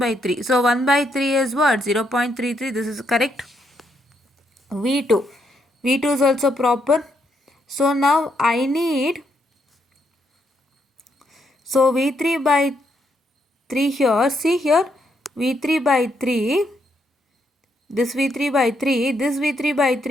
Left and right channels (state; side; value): normal; both; correlation 0.76